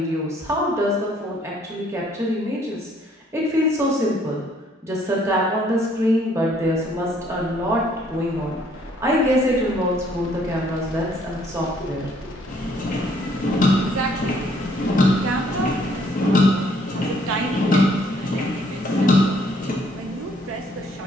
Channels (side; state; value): both; normal; correlation 0.64